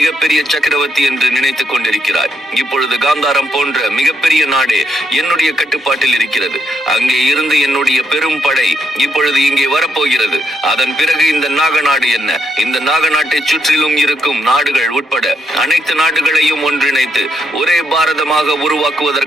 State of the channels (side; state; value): both; normal; correlation 0.77